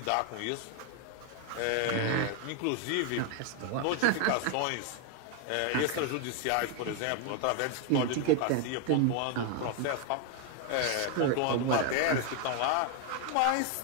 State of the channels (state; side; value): different; both; correlation 0.01